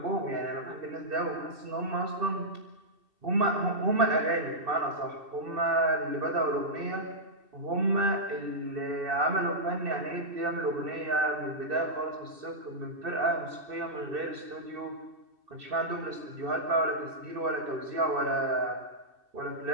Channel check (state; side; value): late; left; 2.6 ms